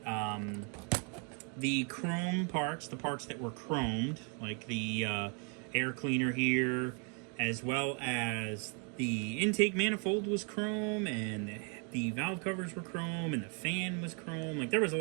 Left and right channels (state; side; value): quieter; left; 37.4 dB